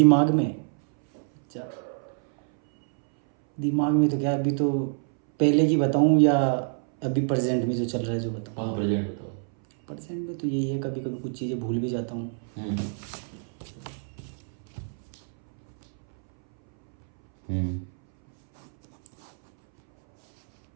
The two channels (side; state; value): left; silent; 61 dB below the other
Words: में, अच्छा दिमाग में तो क्या, अभी तो पहले की बताऊँ या अभी प्रेजेंट में जो चल रहा है जो बताऊँ? कहाँ प्रेजेंट बताओ। प्रेजेंट में तो यही है, कभी कभी कुछ चीज़ें भूल भी जाता हूँ। हम्म हम्म